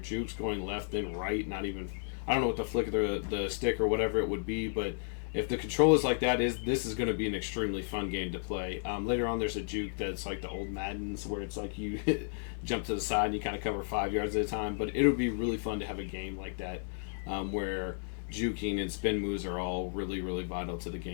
going left then right, not even, I don't know what the flick of the stick or whatever it would be, but if the control is like that, this is going to be an extremely fun game to play. Later on, there's a juke that's like the old Maddens, where it's like you jump to the side and you kind of cover 5 yards at a time. But it would be really fun to have a game like that where juking and spin moves are all really, really vital to the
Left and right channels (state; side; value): silent; right; digital silence